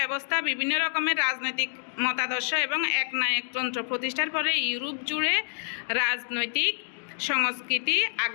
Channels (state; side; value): silent; right; digital silence